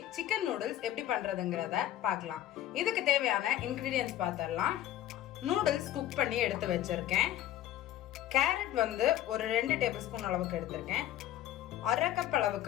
chicken noodles எப்படி பண்றதுங்கறத பார்க்கலாம். இதுக்கு தேவையான இன்கிரிடியன்ட்ஸ் பார்த்தறலாம். நூடுல்ஸ் குக் பண்ணி எடுத்து வச்சிருக்கேன். கேரட் வந்து ஒரு 2 டேபிள்ஸ்பூன் அளவுக்கு எடுத்துர்க்கேன். 1/2 கப்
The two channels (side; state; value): right; quieter; 12.7 dB